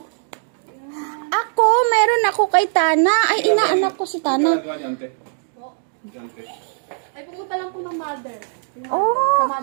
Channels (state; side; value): silent; left; digital silence